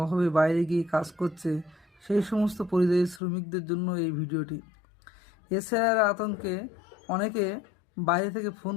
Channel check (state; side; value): drops out; right; at 3.2 s